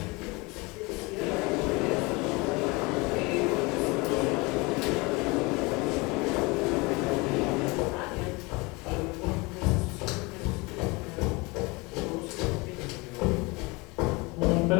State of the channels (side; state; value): right; quieter; 25.8 dB